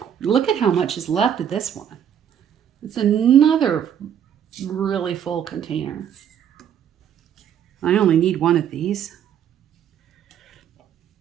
how much is left of this one. It's another really full container. I only need one of these.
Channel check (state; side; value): quieter; left; 9.1 dB